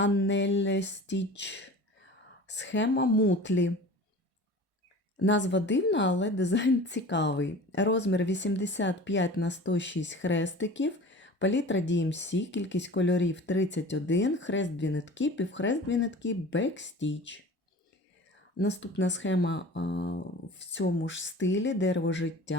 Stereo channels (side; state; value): both; normal; correlation 0.39